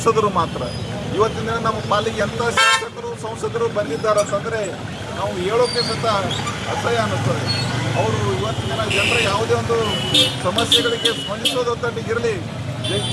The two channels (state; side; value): identical; both; correlation 1.00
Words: ಮಾತ್ರ. ಇವತ್ತಿನ ದಿನ ನಮ್ಮ ಪಾಲಿಗೆ ಎಂಥ ಶಾಸಕರು ಸಂಸದರು ಬಂದಿದ್ದಾರೆ ಅಂತಂದರೆ ನಾವು ಹೇಳೋಕ್ಕೆ ಸಹಿತ ಅಸಹ್ಯ ಅನ್ನಿಸ್ತದೆ. ಅವರು ಇವತ್ತಿನ ದಿನ ಜನರ ಯಾವುದೇ ಒಂದು ಸಮಸ್ಯೆಗಳಿಗೆ ಸ್ಪಂದಿಸೋದೊಂದಿಗಿರಲಿ,